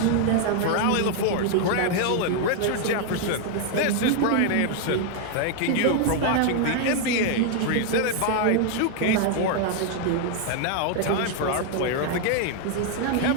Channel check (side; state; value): both; different; correlation 0.00